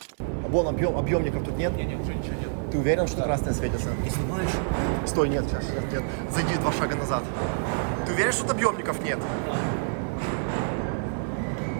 А вон объемников тут нет? Не, уже ничего нет. Ты уверен, что красное светится? Ты снимаешь? Стой, нет, сейчас, нет. Зайди 2 шага назад. Ты уверен, что тут объемников нет? Да.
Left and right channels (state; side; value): silent; left; 60 dB below the other